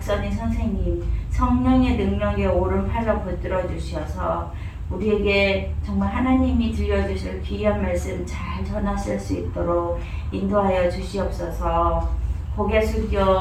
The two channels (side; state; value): both; identical; correlation 1.00